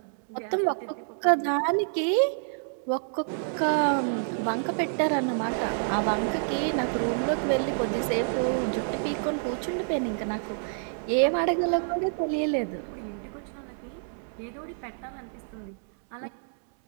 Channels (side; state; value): left; silent; 59 dB below the other